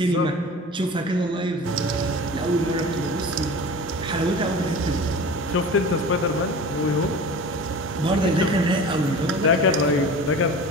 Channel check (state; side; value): normal; both; correlation 0.36